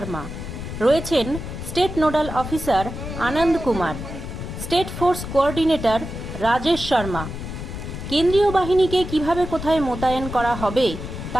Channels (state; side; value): noise; left; rumble, 8 dB below the sound